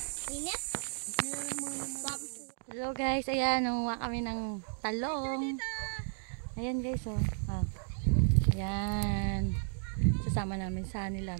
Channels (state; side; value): silent; left; 55 dB below the other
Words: Hello guys, ayan, nangunguha kami ng talong. Ayan guys, oh. Ah. Ayan. Sasama namin sa